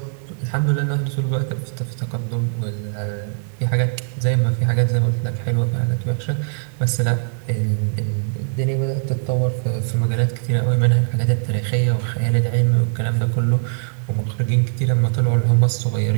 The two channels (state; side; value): silent; left; digital silence